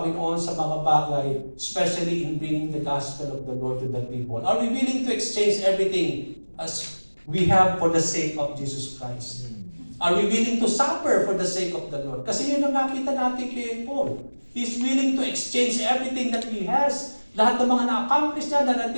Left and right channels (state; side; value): inverted; both; correlation -1.00